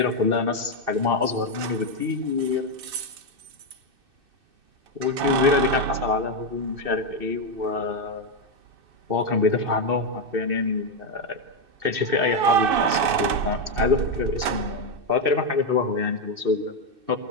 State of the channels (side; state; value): left; late; 2.6 ms